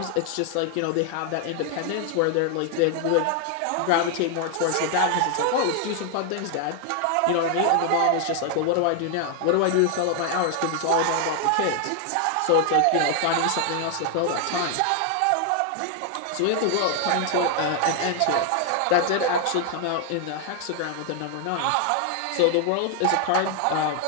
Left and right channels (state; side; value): different; both; correlation 0.00